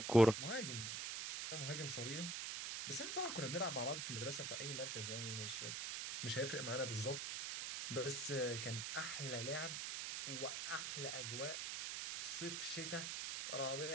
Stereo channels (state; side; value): noise; right; hiss, 3 dB below the sound